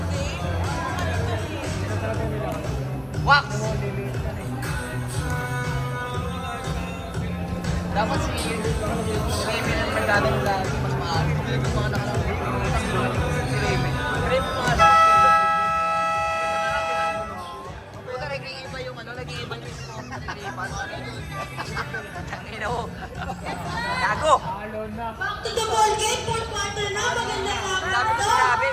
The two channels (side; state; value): both; identical; correlation 1.00